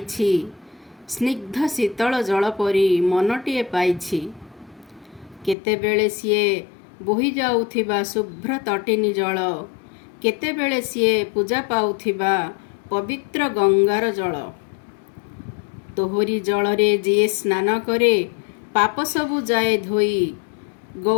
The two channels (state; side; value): drops out; right; at 5.6 s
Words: स्निग्ध शीतल जल परी मनटीए पाइछि। केतेबेले सीए बोही जाउथिबा शुभ्र तटिनी जल, केतेबेले सीए पूजा पाउथिबा पवित्र गंगार जल। तोहरी जलरे जिए स्नान करे, पाप सबु जाए धोई।